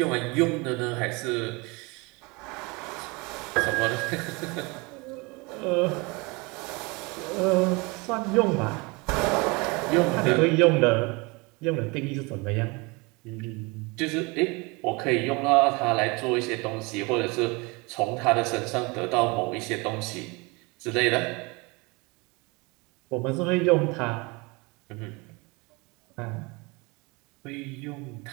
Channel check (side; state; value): left; quieter; 26.9 dB